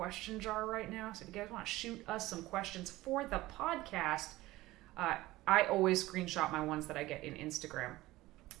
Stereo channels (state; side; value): quieter; left; 17.9 dB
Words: jar right now. So if you guys want to shoot us some questions for the podcast, I always screenshot my ones that I get in Instagram.